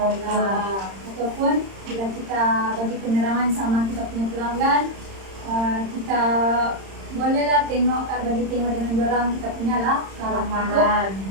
bila kita bagi penerangan sama kita punya pelanggan, kita bolehlah bagi tengok dengan dorang kita punya lah Karangan.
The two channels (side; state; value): left; late; 31 ms